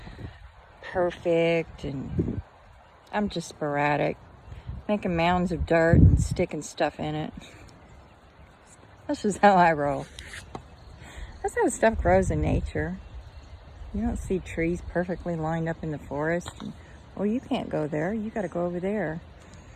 perfect, and I'm just sporadic, making mounds of dirt and sticking stuff in it. That's just how I roll. That's how stuff grows in nature. You don't see trees perfectly lined up in the forest. And, well, you can't go there. You got to go over there.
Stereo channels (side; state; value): both; identical; correlation 1.00